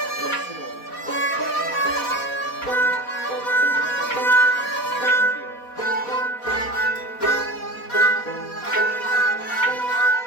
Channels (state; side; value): late; right; 4.1 ms